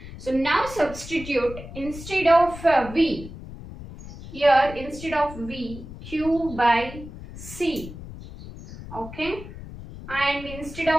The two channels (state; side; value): noise; left; rumble, 13 dB below the sound